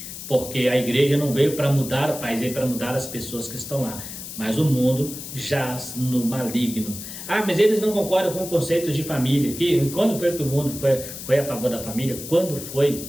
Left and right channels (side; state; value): left; noise; hiss, 10 dB below the sound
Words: porque a igreja não veio para mudar o país, veio para mudar as pessoas que estão lá. Mas o mundo jaz no maligno. Mas eles não concordam com o conceito de família. Quando foi que o mundo foi a favor da família? Quando